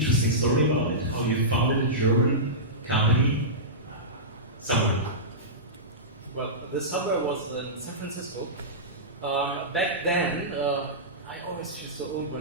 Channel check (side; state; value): both; normal; correlation -0.17